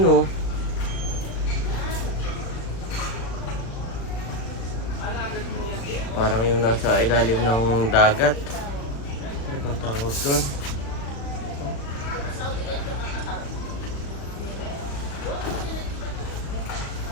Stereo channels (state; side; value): late; right; 36 ms